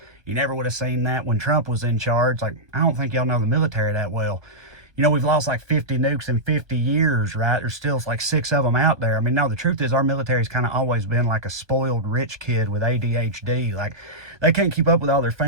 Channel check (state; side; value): late; left; 1.2 ms